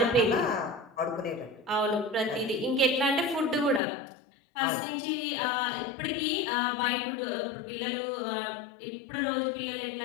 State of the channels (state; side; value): drops out; right; at 3.8 s